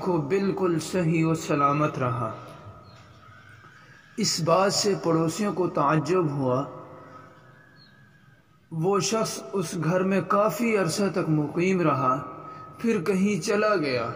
بالکل صحیح و سلامت رہا۔ اس بات سے پڑوسیوں کو تعجب ہوا۔ وہ شخص اس گھر میں کافی عرصہ تک مقیم رہا، پھر کہیں چلا گیا۔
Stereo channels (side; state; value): both; identical; correlation 1.00